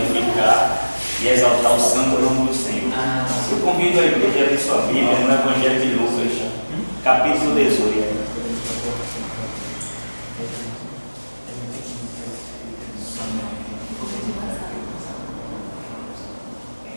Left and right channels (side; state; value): both; inverted; correlation -1.00